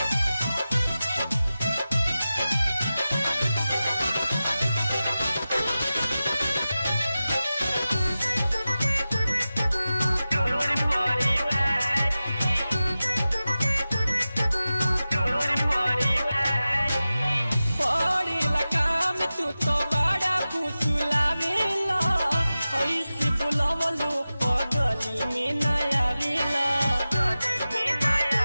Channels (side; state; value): both; inverted; correlation -0.95